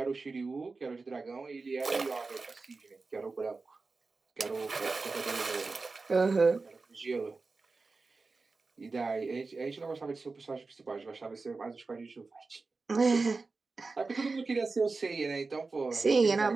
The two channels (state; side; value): quieter; left; 4.0 dB